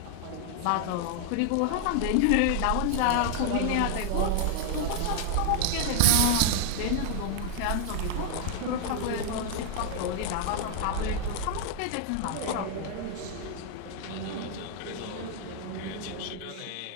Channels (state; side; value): different; both; correlation 0.00